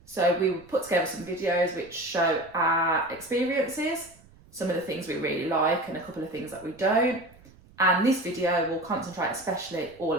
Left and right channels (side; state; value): right; noise; rumble, 26 dB below the sound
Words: So we put together some videos which show our experiences, some of the things we really like and a couple of things that we don't. And this video will concentrate especially all